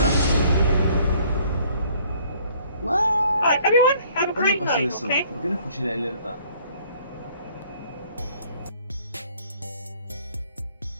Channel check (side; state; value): both; inverted; correlation -0.59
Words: Alright, everyone, have a ¿Cuándo great pasó night, eso? okay? ¿Por qué no escuché la alerta?